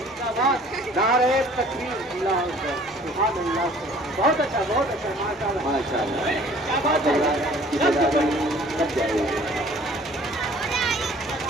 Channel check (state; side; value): normal; both; correlation 0.53